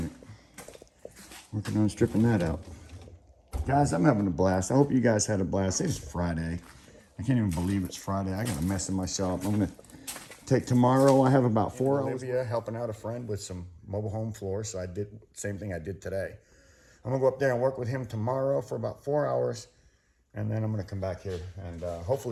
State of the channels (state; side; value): identical; both; correlation 1.00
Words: it. Working on stripping that out. Guys, I'm having a blast. I hope you guys had a blast. It's Friday. I can't even believe it's Friday. I got a mess in my shop. I'm gonna take tomorrow. I have about 4 hours. Olivia helping out a friend with some mobile home floors. So I did the same thing I did today. I'm gonna go up there and work with him tomorrow for about 4 hours. And then I'm gonna come back here and